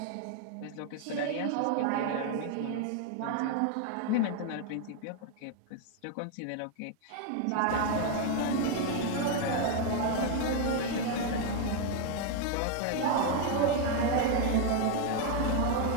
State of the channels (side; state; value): both; different; correlation 0.00